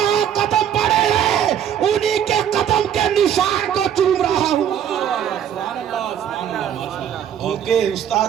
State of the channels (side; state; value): left; quieter; 9.4 dB